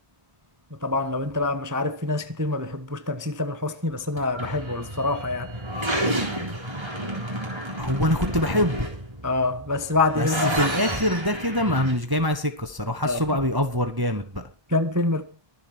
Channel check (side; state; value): left; late; 1.1 ms